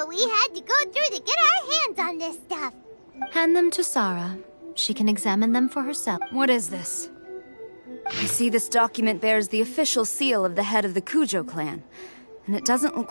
we had to go through to get our hands on this stuff. Hand them to Sarah. She can examine them for herself. What is this? I see this document bears the official seal of the head of the Kujo clan, and it doesn't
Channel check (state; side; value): inverted; both; correlation -1.00